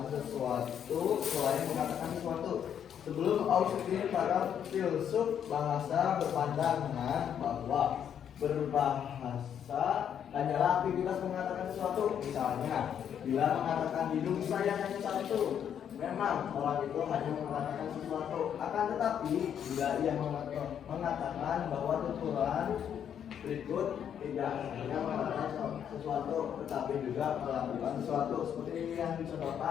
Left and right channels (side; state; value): right; quieter; 8.8 dB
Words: sesuatu selain mengatakan sesuatu. Sebelum Austin, para filsuf bahasa berpandangan bahwa berbahasa hanyalah aktivitas mengatakan sesuatu. Misalnya, bila mengatakan hidung saya hanya satu, memang orang itu hanya mengatakan sesuatu. Akan tetapi, bila ia mengatakan bahwa tuturan berikut tidak hanya mengatakan sesuatu, tetapi juga melakukan sesuatu, seperti yang